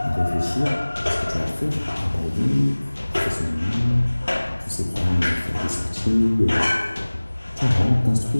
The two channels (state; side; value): inverted; both; correlation -1.00